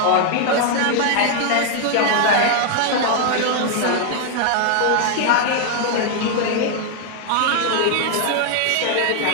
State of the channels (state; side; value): different; both; correlation 0.00